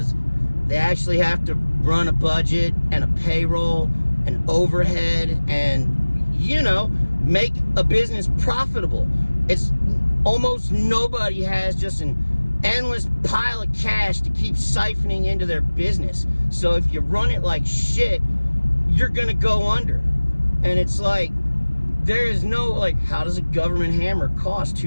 they actually have to run a budget and a payroll and overhead and, you know, make a business profitable. It's almost nobody has just an endless pile of cash to keep siphoning into their business. So if you run it like shit, you're gonna go under. And it's like, there is no, like, how does a government hammer cost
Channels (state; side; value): inverted; both; correlation -1.00